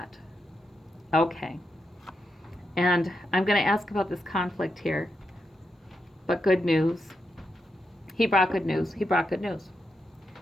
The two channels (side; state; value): both; normal; correlation 0.85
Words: Okay. And I'm going to ask about this conflict here. But good news. He brought good news. He brought good news.